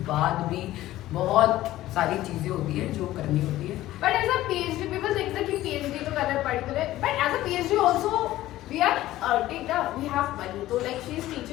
बाद भी बहुत सारी चीजें होती है जो करनी होती है। But as a PhD people think that कि पीएचडी तो करना पड़ता है, but as a PhD also we are earning we have money, so like she is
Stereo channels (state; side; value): quieter; right; 15.2 dB